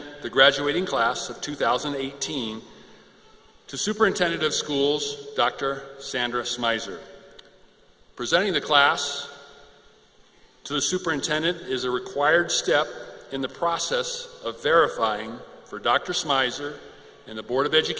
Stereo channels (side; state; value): both; identical; correlation 1.00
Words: the graduating class of 2018 to Superintendent of Schools, Dr. Sandra Smizer. Presenting the class to the superintendent is a required step in the process of verifying for Dr. Smizer and the Board of